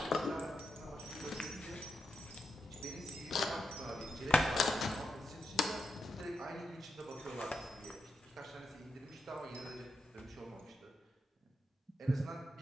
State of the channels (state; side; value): normal; both; correlation 0.84